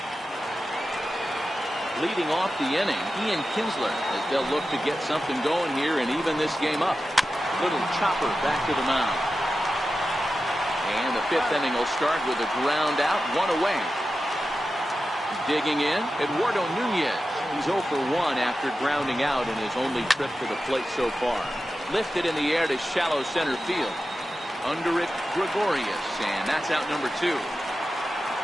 Leading off the inning, Ian Kinsler, as they'll look to get something going here and even this game up. Little chopper back to the mound. And the 5th inning will start with a ground out, 1 away. Digging in, Eduardo Nunez. He's 0 for 1 after grounding out in his only trip to the plate so far. Lifted in the air to shallow center field. Under it, Gregorius, and that's out number 2.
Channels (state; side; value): normal; both; correlation 0.92